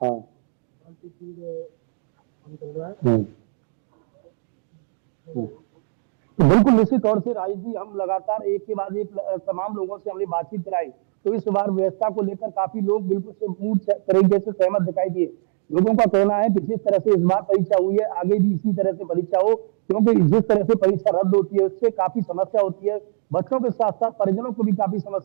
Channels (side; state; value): left; silent; digital silence